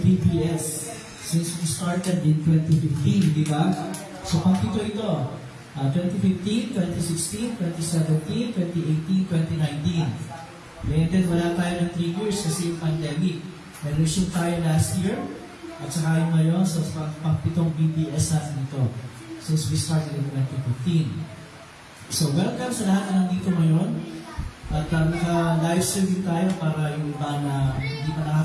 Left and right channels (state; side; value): identical; both; correlation 1.00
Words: since we started in 2015, di ba? So pang-pito ito. 2015, 2016, 2017, 2018, 2019. And then wala tayo ng 3 years kasi yung pandemic. Nag-resume tayo last year at saka yung ngayon sa pang-pitong BBS natin ito since we started in 2015. So welcome sa lahat na nandito ngayon at naka-live streaming tayo para yung iba na hindi pa